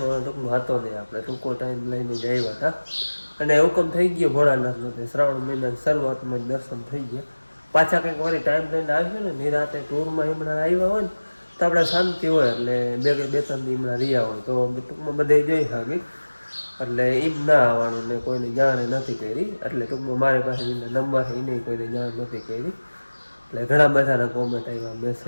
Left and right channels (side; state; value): both; inverted; correlation -1.00